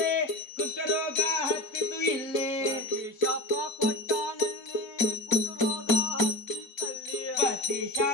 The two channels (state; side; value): late; right; 4.0 ms